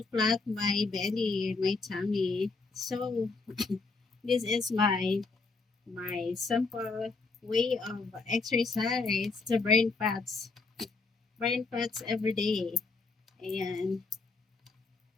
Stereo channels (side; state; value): right; quieter; 4.1 dB